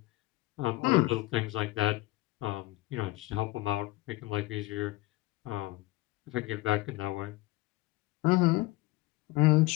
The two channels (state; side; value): quieter; right; 19.9 dB